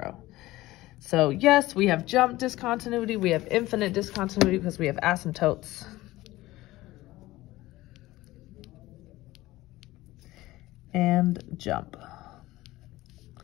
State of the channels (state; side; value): quieter; right; 17.7 dB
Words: So yes, we have jump discontinuity. We have infinite discontinuity because we have asymptotes. And jump.